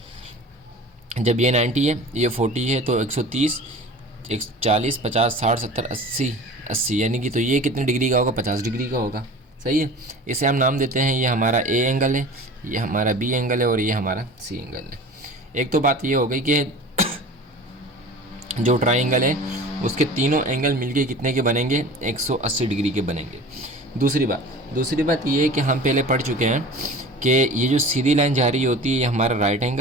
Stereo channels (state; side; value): normal; both; correlation 0.39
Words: जब ये 90 है, ये 40 है, तो 130, 140, 50, 60, 70, 80 यानी कि तो ये कितने डिग्री का होगा? 50 डिग्री का होगा। सही है, इसे हम नाम देते हैं, ये हमारा ए एंगल है, ये हमारा बी एंगल है और ये हमारा सी एंगल है। एक तो बात ये हो गई कि जो ट्राइंगल है उसके तीनों एंगल मिलके कितने के बनेंगे? 180 डिग्री के बनेंगे। दूसरी बात ये है कि हम पहले पढ़ चुके हैं कि ये जो सीधी लाइन जा रही होती है ये हमारा राइट